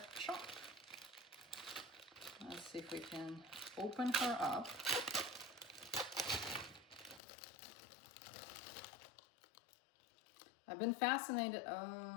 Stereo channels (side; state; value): right; drops out; at 7.2 s